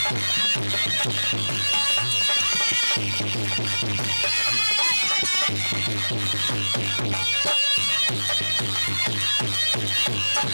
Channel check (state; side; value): inverted; both; correlation -1.00